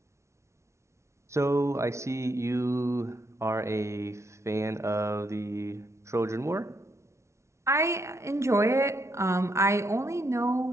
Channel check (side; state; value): left; late; 0.13 ms